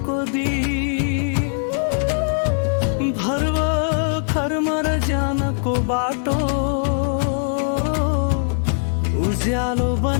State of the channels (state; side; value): silent; right; digital silence